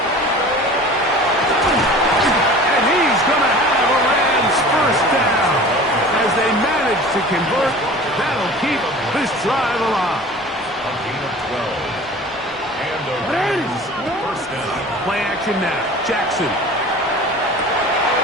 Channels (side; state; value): both; normal; correlation 0.41